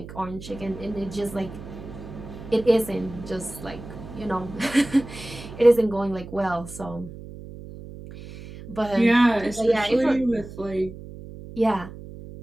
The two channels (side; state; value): right; noise; hum, 14 dB below the sound